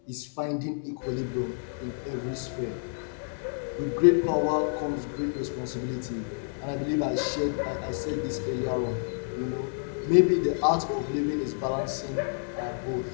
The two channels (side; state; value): right; silent; digital silence